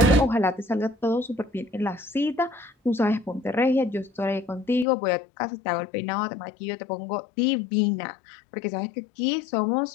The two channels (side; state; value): right; drops out; at 4.9 s